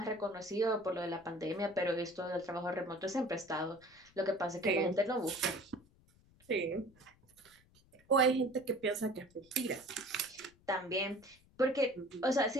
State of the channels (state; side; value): noise; left; rumble, 29 dB below the sound